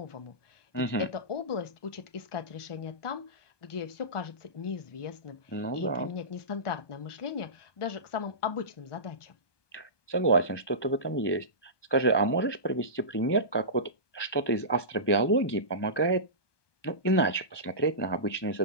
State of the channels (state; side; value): late; right; 1.2 ms